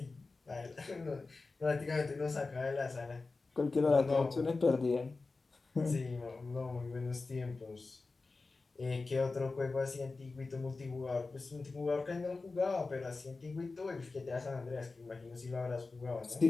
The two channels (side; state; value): right; quieter; 3.8 dB